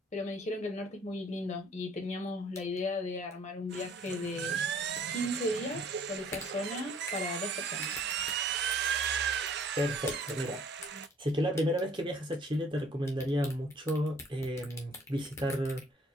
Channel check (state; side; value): normal; both; correlation 0.57